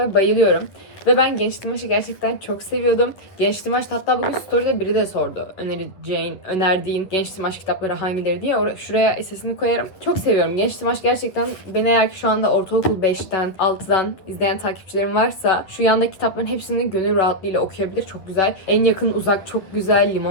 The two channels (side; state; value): right; late; 10 ms